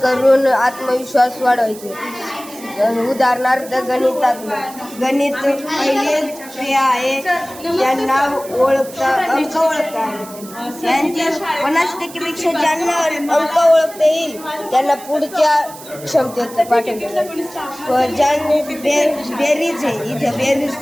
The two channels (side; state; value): right; noise; hiss, 17 dB below the sound